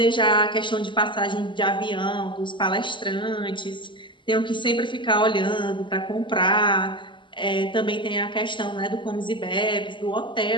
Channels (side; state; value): right; late; 0.24 ms